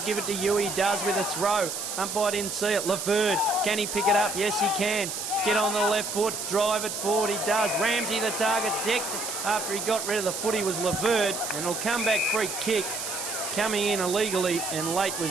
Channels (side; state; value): right; noise; hiss, 5 dB below the sound